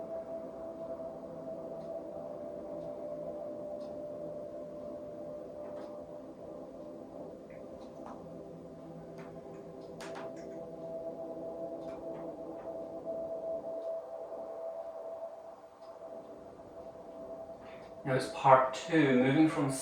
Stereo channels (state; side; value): identical; both; correlation 1.00